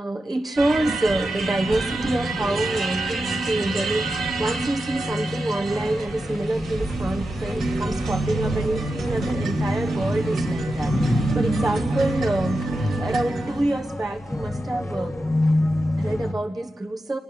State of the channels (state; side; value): normal; both; correlation 0.90